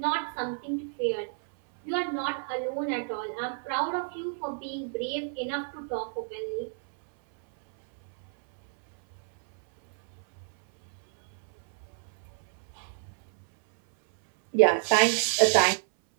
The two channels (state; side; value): silent; left; 59 dB below the other